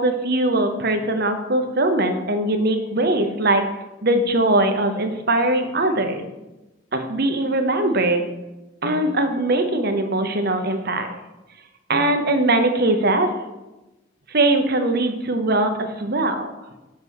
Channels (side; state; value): both; normal; correlation 0.04